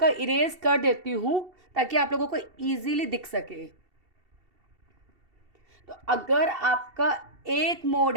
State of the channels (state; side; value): late; left; 2.7 ms